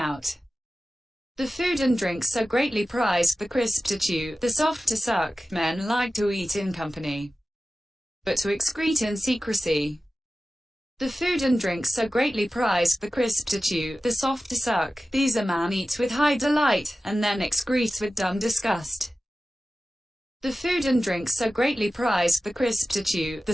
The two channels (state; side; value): normal; both; correlation 0.95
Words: The food and drink so greatly prized, the crisp to chew, the soft to suck, men like to eat in company, but to excrete in secrecy. The food and drink so greatly prized, the crisp to chew, the soft to suck, these a man eats with high delight, and then excretes with dumb disgust. The food and drink so greatly prized, the crisp to chew, the